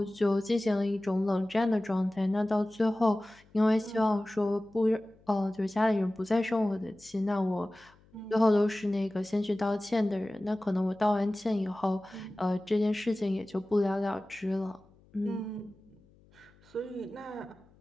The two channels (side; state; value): left; noise; hum, 29 dB below the sound